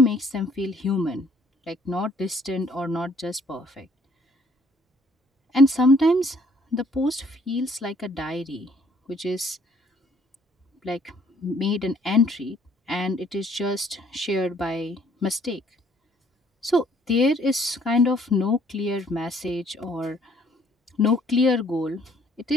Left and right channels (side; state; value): both; normal; correlation 0.62